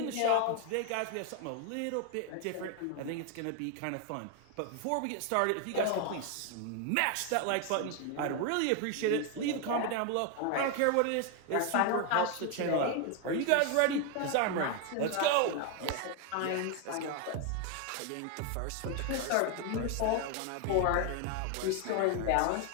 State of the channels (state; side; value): different; both; correlation 0.01